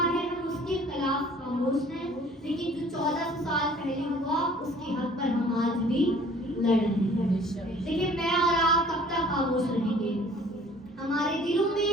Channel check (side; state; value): both; normal; correlation 0.52